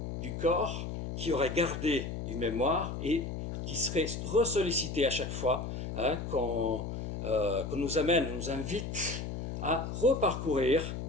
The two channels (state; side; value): noise; left; hum, 5 dB below the sound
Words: du corps qui auraient gardé une mémoire et qui seraient ressollicités à chaque fois qu'on nous invite à reparcourir